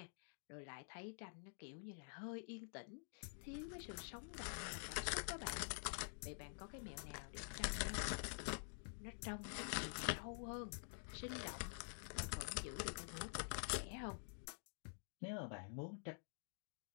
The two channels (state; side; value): silent; right; digital silence